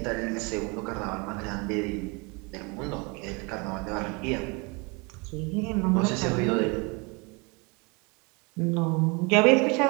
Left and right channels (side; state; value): left; quieter; 29.8 dB